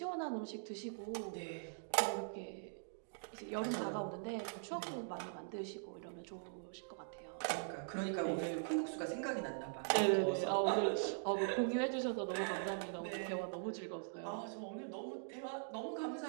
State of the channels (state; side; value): silent; left; digital silence